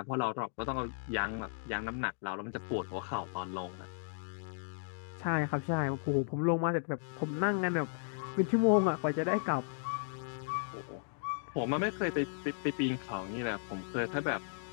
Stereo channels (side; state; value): right; silent; digital silence